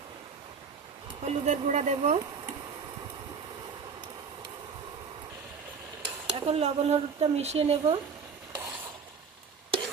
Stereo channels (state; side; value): quieter; left; 5.8 dB